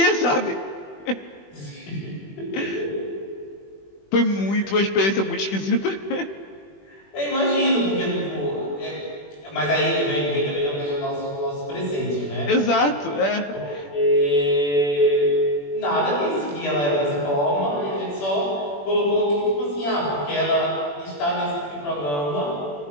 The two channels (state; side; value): late; right; 21 ms